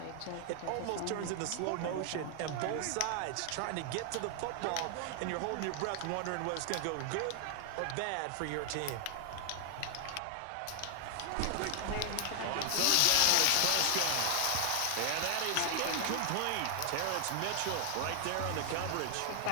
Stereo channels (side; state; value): both; different; correlation 0.00